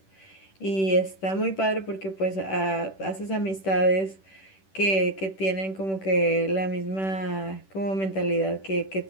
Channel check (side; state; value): right; late; 10 ms